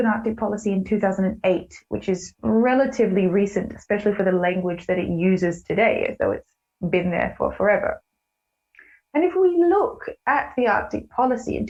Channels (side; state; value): both; identical; correlation 1.00